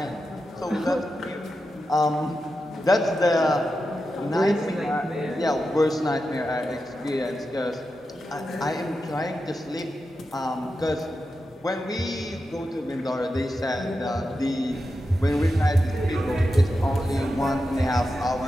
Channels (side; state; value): both; normal; correlation 0.90